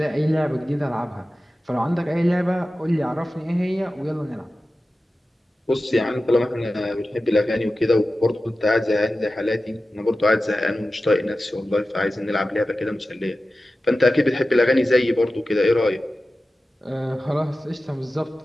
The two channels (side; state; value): both; normal; correlation 0.94